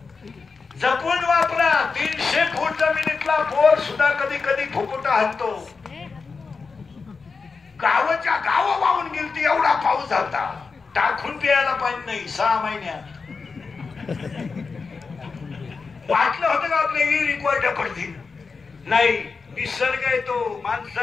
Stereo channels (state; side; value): quieter; right; 4.7 dB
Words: जपून वापरा. 300 फूट जमिनीतला बोर सुद्धा कधी कधी फुकुटा हाणतो. गावाच्या गाव वाहून गेलती एवढा पाऊस झाला. टाकून प्यायला पाणी नाही 6 महिन्यात. वाटलं होतं का आपल्या रिक्वायर्ड पडतील? नाही. निसर्ग आहे तो.